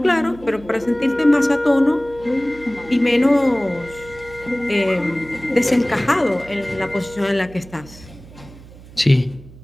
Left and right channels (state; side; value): noise; right; hum, 20 dB below the sound